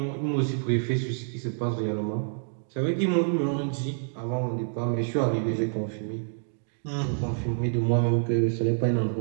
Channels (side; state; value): left; silent; 60 dB below the other